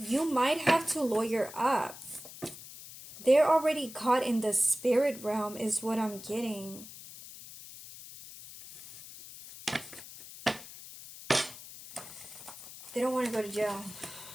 might have to lawyer up. They're already caught in the spirit realm is what I'm getting. They don't want to go to jail.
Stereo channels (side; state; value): left; noise; hiss, 15 dB below the sound